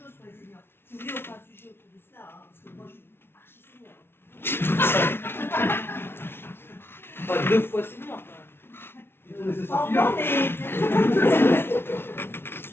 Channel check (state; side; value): late; right; 0.11 ms